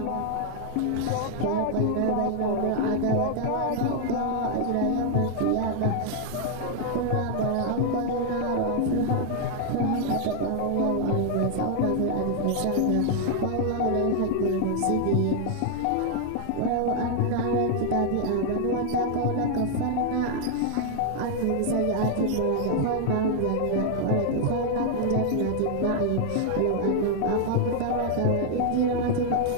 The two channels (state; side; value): different; both; correlation 0.00